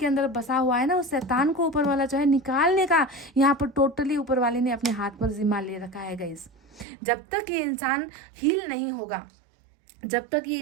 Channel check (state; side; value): drops out; left; at 6.9 s